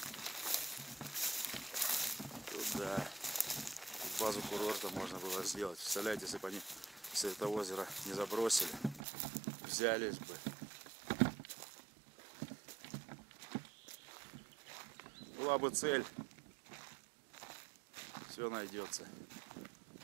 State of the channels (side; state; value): left; drops out; at 9.0 s